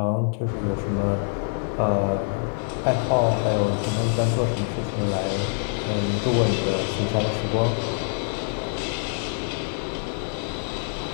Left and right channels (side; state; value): right; silent; digital silence